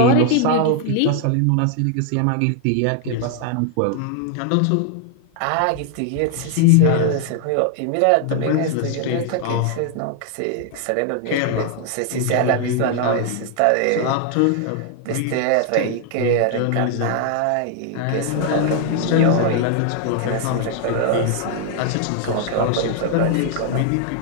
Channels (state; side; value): different; both; correlation 0.00